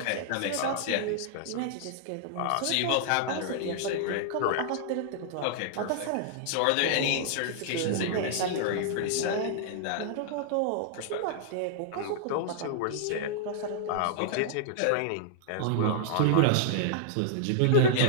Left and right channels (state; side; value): different; both; correlation -0.01